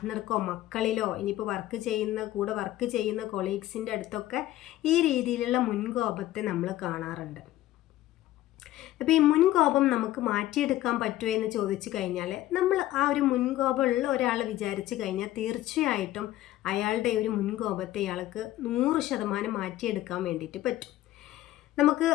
മക്കളിലോ ഇനിയിപ്പോൾ കൂടെ വർക്ക് ചെയ്യുന്ന കൊളീഗ്സിൻ്റെ അടുത്തൊക്കെ ഈ രീതിയിലുള്ള മുൻകോപത്തെ നമ്മൾ കാണാറുണ്ട്. അപ്പോൾ ഈ മുൻകോപം നമുക്ക് മാറ്റിയെടുക്കാൻ പറ്റുമോ എന്ന് ചോദിച്ചു കഴിഞ്ഞാൽ, നമ്മൾ ആ ഒരു മുൻകോപമുള്ള ഒരാൾ വിചാരിച്ചു കഴിഞ്ഞാൽ തീർച്ചയായിട്ടും അയാളുടെ ഒരു മുൻകോപത്തെ ഇയാൾക്ക് 100% മാറ്റിയെടുക്കാൻ വേണ്ടിയിട്ട് പറ്റും. നമുക്ക്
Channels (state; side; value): quieter; right; 14.7 dB